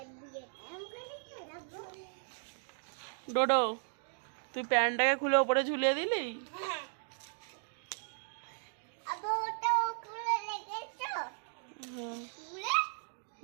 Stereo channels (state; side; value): silent; left; 54 dB below the other